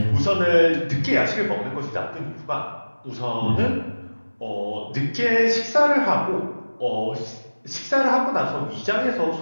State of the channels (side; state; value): both; inverted; correlation -1.00